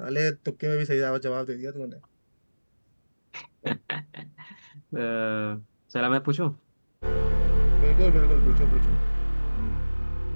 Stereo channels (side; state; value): both; inverted; correlation -1.00